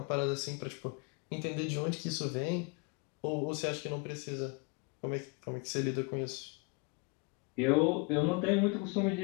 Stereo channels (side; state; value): right; quieter; 31.4 dB